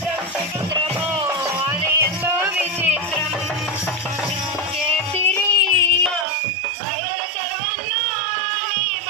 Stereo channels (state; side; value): drops out; left; at 6.2 s